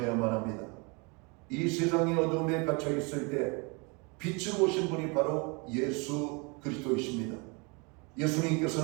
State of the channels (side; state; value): left; quieter; 30.7 dB